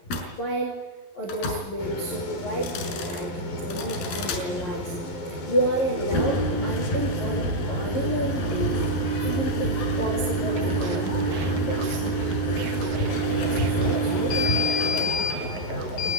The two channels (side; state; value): right; late; 11 ms